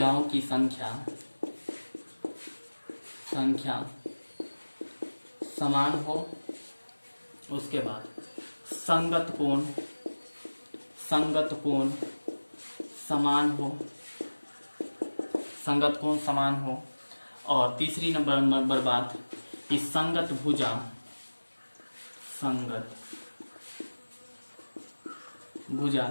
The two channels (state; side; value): inverted; both; correlation -1.00